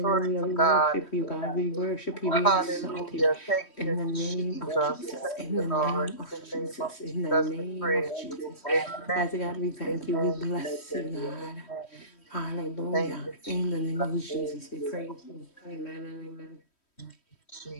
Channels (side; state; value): right; late; 3.1 ms